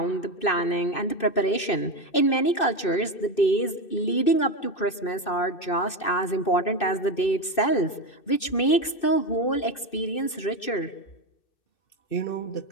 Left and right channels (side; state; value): right; late; 2.6 ms